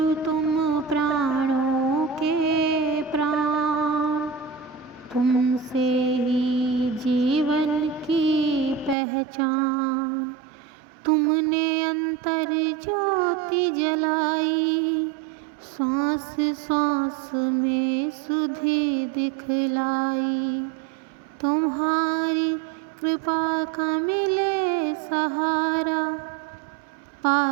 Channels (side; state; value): left; drops out; at 9.0 s